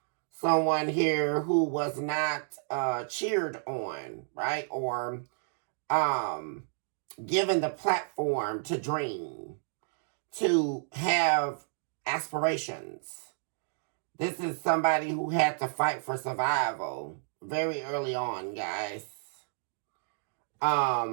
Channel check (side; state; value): left; silent; digital silence